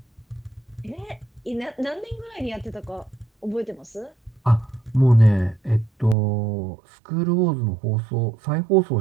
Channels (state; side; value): drops out; left; at 6.2 s